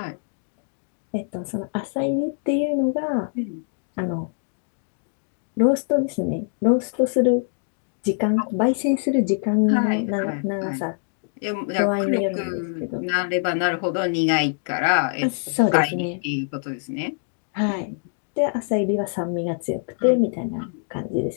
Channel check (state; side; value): silent; right; 63 dB below the other